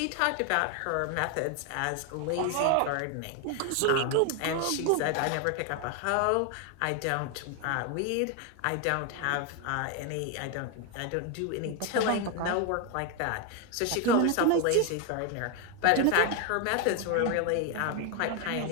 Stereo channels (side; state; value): both; different; correlation 0.01